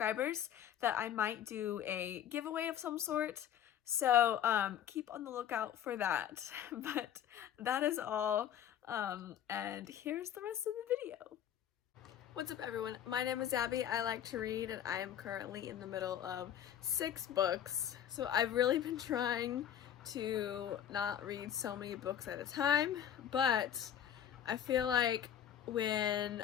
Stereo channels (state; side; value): quieter; right; 10.0 dB